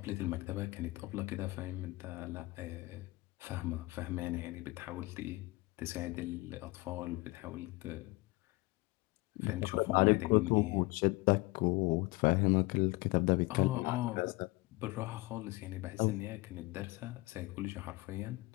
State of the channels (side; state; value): right; quieter; 22.5 dB